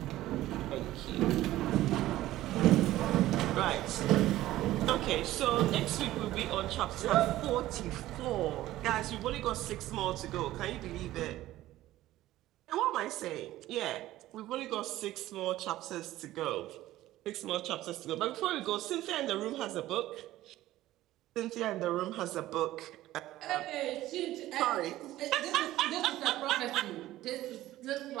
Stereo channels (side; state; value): left; quieter; 15.3 dB